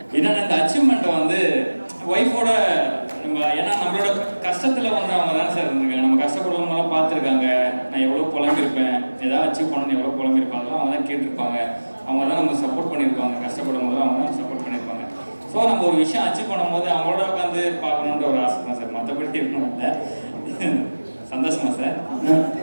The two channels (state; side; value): inverted; both; correlation -1.00